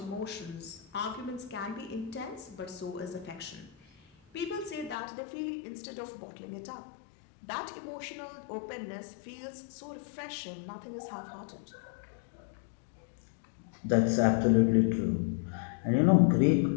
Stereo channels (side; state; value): right; drops out; at 5.0 s